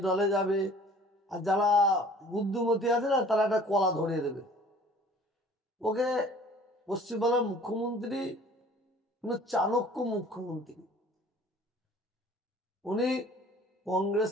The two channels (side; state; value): both; normal; correlation 0.50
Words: ডালে যাবে। আর যারা বুদ্ধিমতী আছে না, তারা একটা কলা ধরিয়ে দেবে। ওকে পশ্চিমবাংলার মুখ্যমন্ত্রী চাণক্য মুখ্যমন্ত্রী, উনি কংগ্রেস